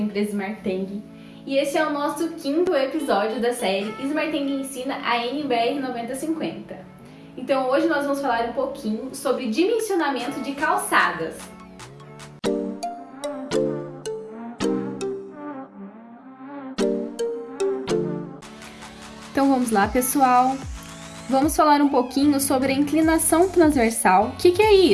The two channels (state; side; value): identical; both; correlation 1.00